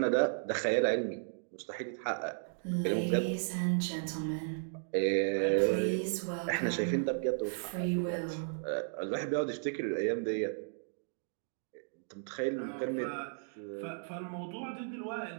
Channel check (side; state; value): left; silent; digital silence